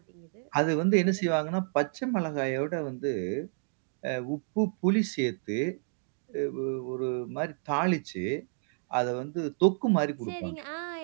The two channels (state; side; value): silent; left; digital silence